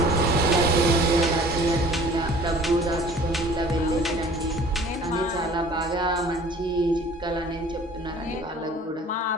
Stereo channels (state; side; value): normal; both; correlation 0.49